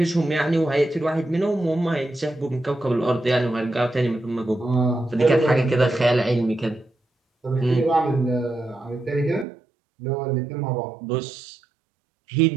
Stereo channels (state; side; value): drops out; left; at 9.5 s